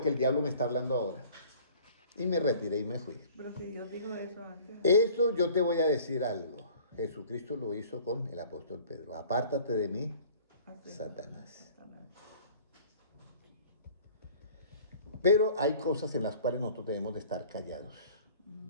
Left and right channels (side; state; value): both; inverted; correlation -0.48